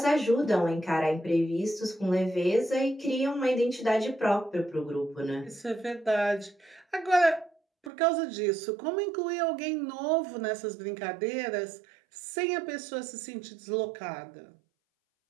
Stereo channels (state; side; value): drops out; left; at 7.9 s